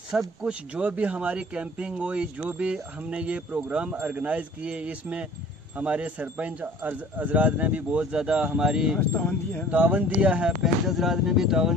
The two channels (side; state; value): both; normal; correlation 0.48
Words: कुछ जो भी हमारी कैंपिंग हुई, जो भी हमने ये प्रोग्राम ऑर्गेनाइज़ किए, इसमें हमारे सरपंच हजरात ने भी बहुत ज़्यादा हमारी तावन दिया है, पंच हजरात ने भी